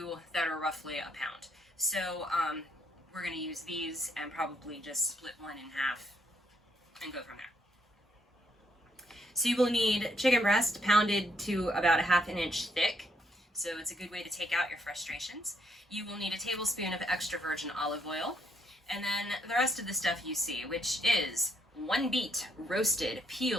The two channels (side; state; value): both; normal; correlation 0.73